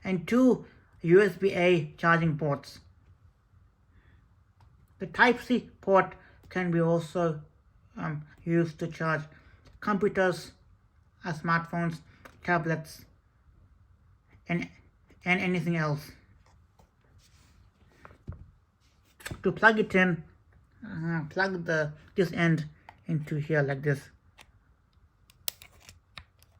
and two USB-A charging ports. The Type-C port can be also used to charge computers, smartphones, tablets, and anything else. To plug it in, plug this end into here like this.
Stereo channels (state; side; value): identical; both; correlation 1.00